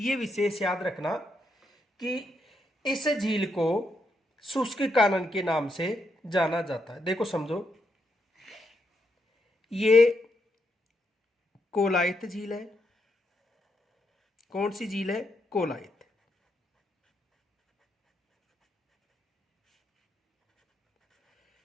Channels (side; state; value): both; normal; correlation 0.80